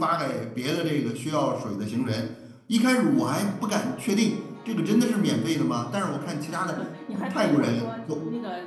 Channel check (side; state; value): both; identical; correlation 1.00